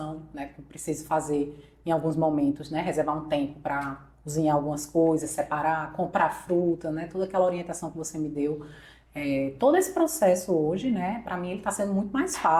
né? Que eu preciso fazer em alguns momentos, né? Reservar um tempo para cozinhar algumas coisas, separar, comprar fruta, né? Toda aquela orientação que você me deu. Todo esse processo hoje, né? Para mim ele está sendo muito mais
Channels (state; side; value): identical; both; correlation 1.00